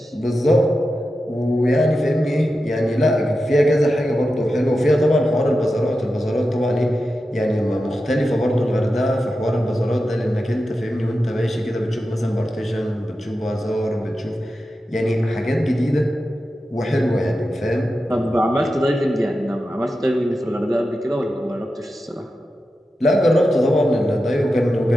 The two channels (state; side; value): normal; both; correlation 0.91